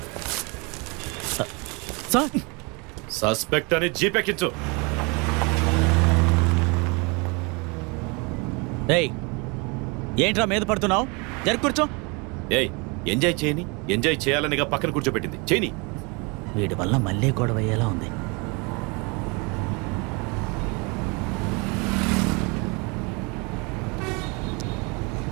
సార్ సస్పెక్ట్ అని జీపెక్కించు. ఏయ్ ఏంట్రా మీద పడుతున్నావు? జరి కూర్చో. ఏయ్ ఎంజాయ్ చేయని, ఎంజాయ్ చేయాలనిగా పక్కన కూర్చోబెట్టింది. చేయని. వీడి వల్ల మళ్ళీ గొడవ అయ్యేలా ఉంది.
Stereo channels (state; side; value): quieter; left; 29.9 dB